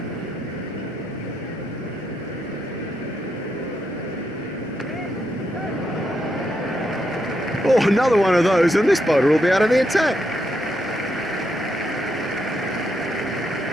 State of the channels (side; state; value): both; normal; correlation 0.80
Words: Oh, another one of those, and this bowler will be out of the attack.